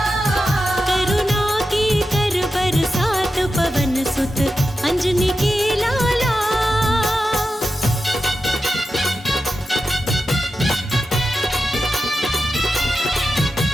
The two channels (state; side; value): normal; both; correlation 0.91